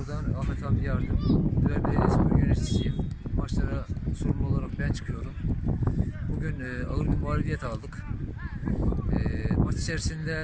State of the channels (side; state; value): both; identical; correlation 1.00